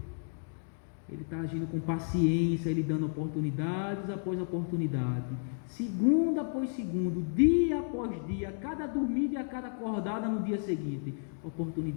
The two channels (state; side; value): silent; right; digital silence